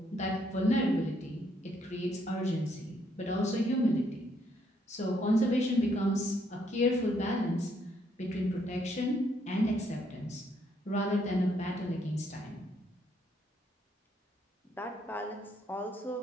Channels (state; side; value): normal; both; correlation 0.71